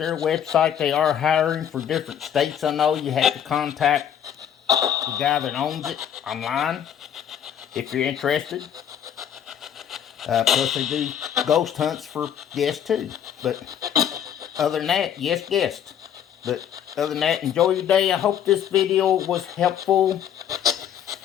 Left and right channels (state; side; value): quieter; right; 9.4 dB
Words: website. They are hiring for different states. I know you have to contact the guy that owns it online if you're interested. Plus they do ghost hunts for guests too. But other than that, yes, guest. But other than that, enjoy your day. I hope this video was helpful.